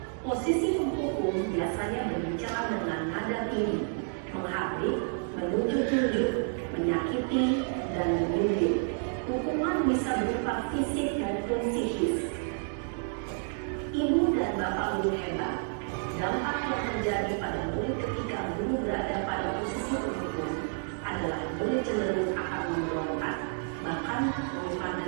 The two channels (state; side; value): silent; left; 58 dB below the other